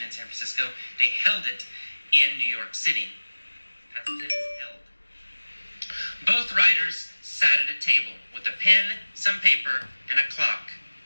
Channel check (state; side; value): inverted; both; correlation -1.00